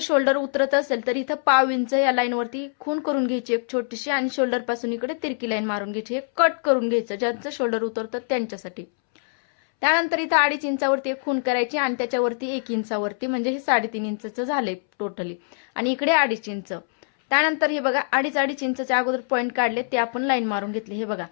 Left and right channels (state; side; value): silent; right; 63 dB below the other